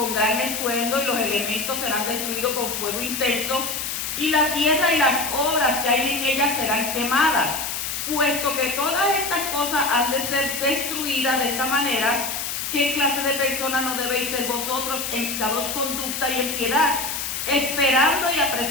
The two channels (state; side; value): noise; left; hiss, 3 dB below the sound